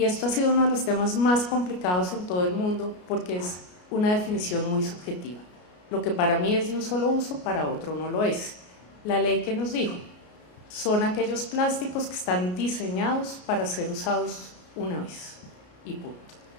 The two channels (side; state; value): right; late; 33 ms